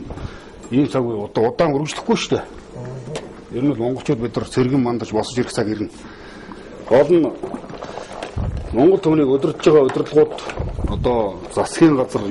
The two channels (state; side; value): identical; both; correlation 1.00